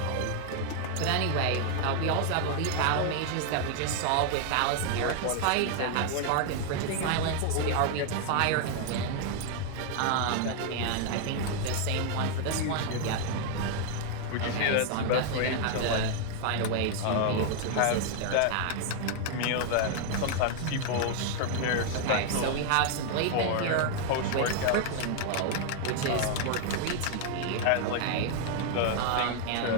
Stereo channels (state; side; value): different; both; correlation 0.00